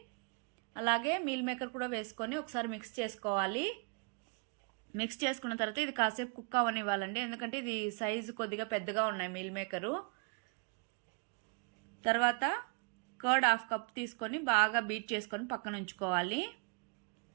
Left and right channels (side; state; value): left; quieter; 36.0 dB